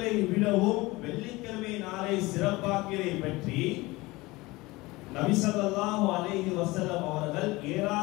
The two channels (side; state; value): right; quieter; 21.4 dB